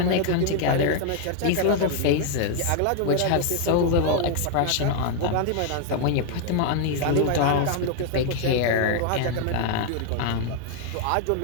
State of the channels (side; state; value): both; different; correlation 0.00